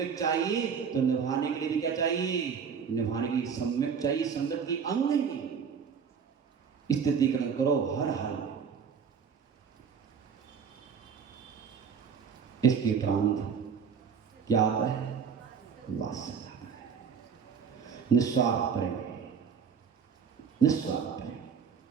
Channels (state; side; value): quieter; left; 6.6 dB